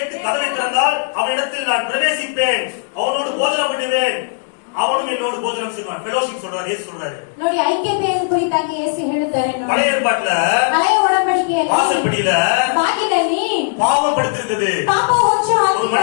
கதவை திறந்தால் அவனிடத்தில் நான் பிரவேசிப்பேன், அவனோடு போஜனம் பண்ணுவேன், அவனும் என்னோடு போஜனம் செய்வான். ஃபெலோஷிப் சொல்றாரு, இயேசு சொல்றாரு. ನೋಡಿ, ಐಕ್ಯತೆಯನ್ನು ಕುರಿತಾಗಿ ಯೇಸು ಹೇಳುತ್ತಾರೆ ನೋಡಿ. பழைய ஏற்பாட்டுல ಹಳೆಯ ಒಡಂಬಡಿಕೆಯಲ್ಲಿ வாசற்படியில ಬಾಗಿಲಲ್ಲಿ பாவம் படுத்திருக்குது. ಪಾಪ ಹೊಚ್ಚು ஒரு மனிதன்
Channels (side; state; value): right; silent; digital silence